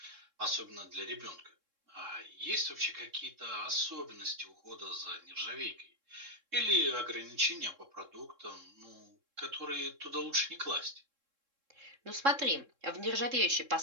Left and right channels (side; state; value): left; late; 3.7 ms